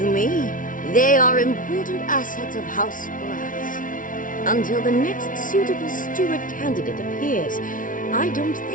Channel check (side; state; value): right; late; 0.38 ms